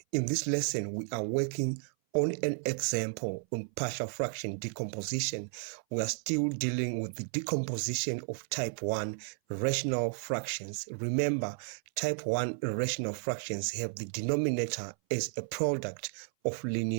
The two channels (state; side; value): silent; left; 56 dB below the other